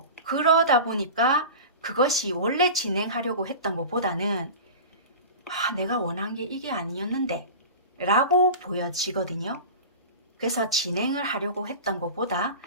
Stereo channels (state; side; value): inverted; both; correlation -0.32